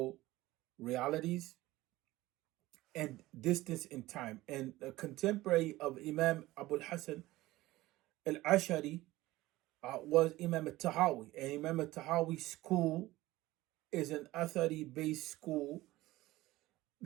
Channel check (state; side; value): quieter; left; 17.8 dB